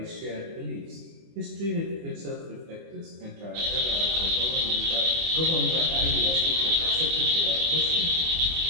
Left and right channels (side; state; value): left; late; 24 ms